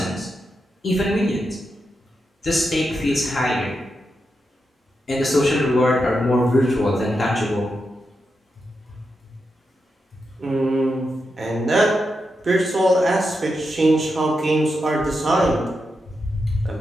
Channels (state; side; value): normal; both; correlation 0.86